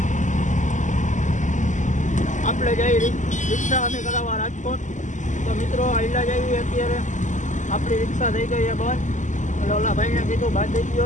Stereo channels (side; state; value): right; late; 0.36 ms